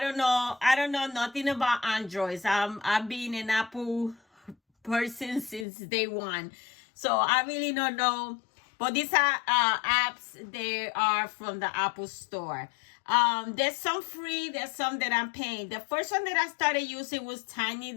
don't know nothing about Androids. I've been an Apple person since day one, so I really don't know. But these are apps. They are from the Apple Store. There's some free, there's some that I'm paying. The first one that I started using was Tiny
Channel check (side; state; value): right; drops out; at 5.7 s